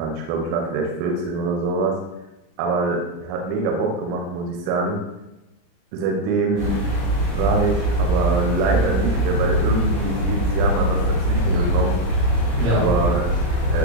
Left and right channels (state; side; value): late; left; 34 ms